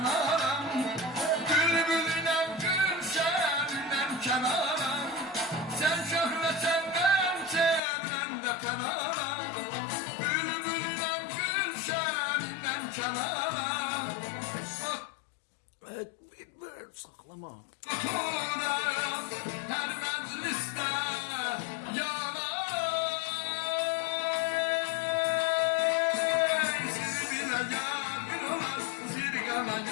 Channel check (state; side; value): drops out; right; at 7.8 s